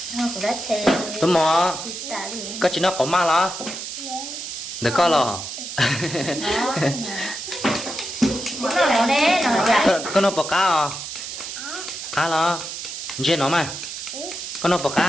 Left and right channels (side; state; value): right; noise; hiss, 8 dB below the sound